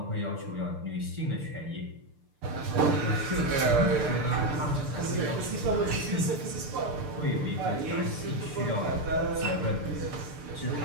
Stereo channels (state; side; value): late; left; 6.7 ms